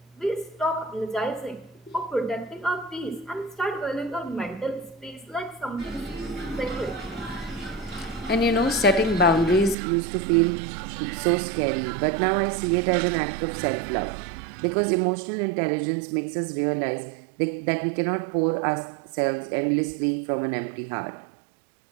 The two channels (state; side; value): drops out; left; at 9.8 s